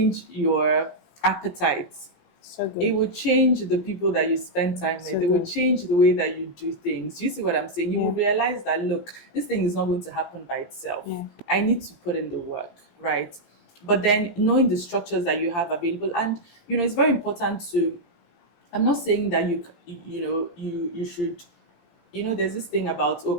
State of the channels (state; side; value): late; right; 17 ms